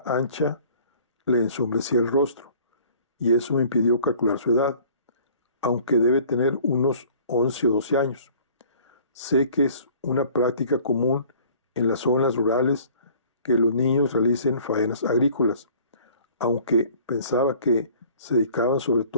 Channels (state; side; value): inverted; both; correlation -0.52